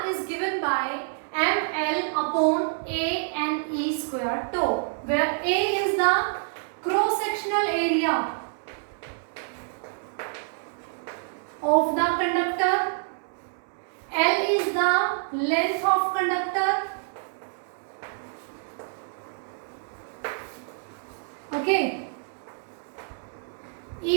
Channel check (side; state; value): left; silent; digital silence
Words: is given by ml upon A and E square tau, where A is the cross-sectional area of the conductor, L is the length of conductor, okay,